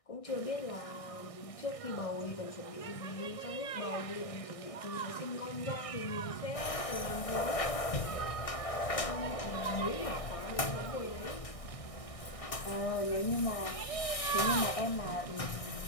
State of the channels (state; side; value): late; right; 1.6 ms